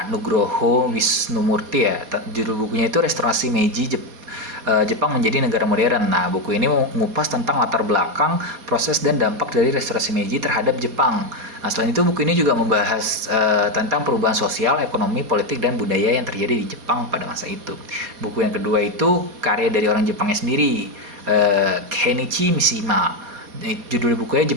Nugroho Wisnumurti ya. Judul bukunya itu Restorasi Meiji Jepang menjadi negara modern. Nah, buku ini mengupas tentang latar belakang, proses dan dampak dari restorasi Meiji terhadap Jepang. Nah, selain itu buku ini juga membahas tentang perubahan sosial, ekonomi, politik dan budaya yang terjadi di Jepang pada masa itu. Buku yang kedua itu karya dari orang Jepangnya sendiri, Kenichi Mishima. Judul bukunya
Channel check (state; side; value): late; left; 4.2 ms